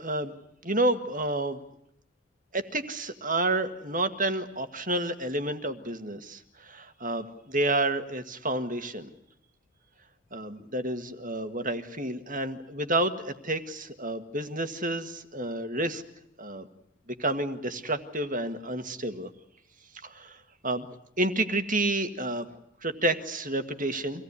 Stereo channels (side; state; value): both; normal; correlation 0.11